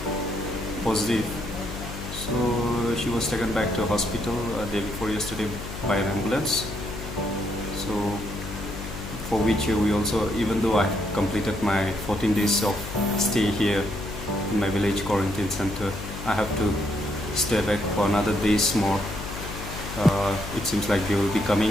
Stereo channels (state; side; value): noise; left; hum, 9 dB below the sound